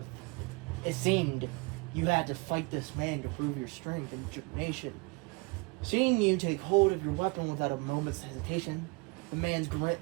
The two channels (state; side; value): quieter; left; 28.2 dB